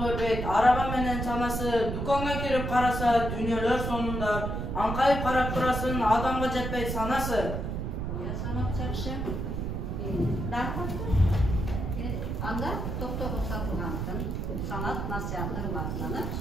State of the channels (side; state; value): right; noise; rumble, 3 dB below the sound